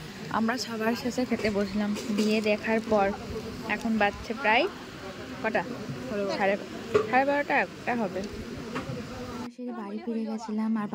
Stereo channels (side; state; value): both; identical; correlation 1.00